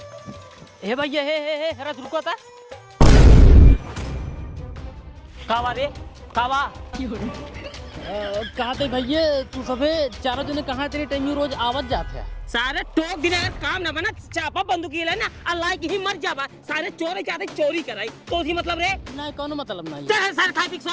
हे भैया हे हरा रुको था कावा रे कावा कहा थे भैया तू सबे चारों जने कहाँ तेरे टाइम रोज आवत जाते हैं सारे टोक दिन काम ना बना चापा बंदूकी ले ना अल्लाह की ही मर जावा सारे चोरी चाहते चोरी कराई तो ही मतलब रे नहीं कौन मतलब नहीं चल सारे खाई पी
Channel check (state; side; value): identical; both; correlation 1.00